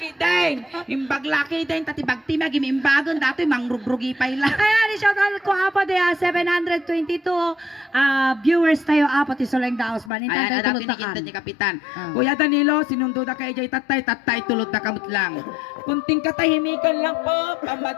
din. Imbag laki din, tatibag timag, imimbagon, dati mangrugrugi pa ila. Ayan, shout out ko apo de 722 viewers tayo apo ti Soleng Daos ban. Ayan, Intay dati tulot nikinta takan. ni Kapitan. Ah. Kuya Danilo, sinundo na kay Jay tatay tulot na kamot lang. Kunting katahimikan lang po,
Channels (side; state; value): right; drops out; at 10.1 s